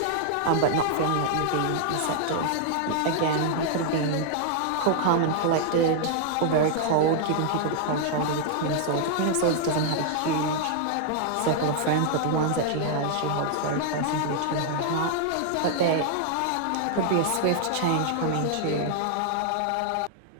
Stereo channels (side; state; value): both; different; correlation 0.00